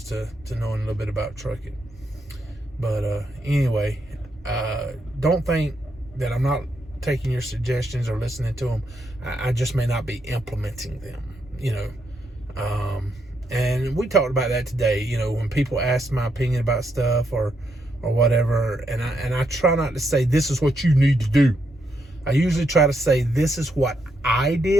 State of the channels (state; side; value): normal; both; correlation 0.79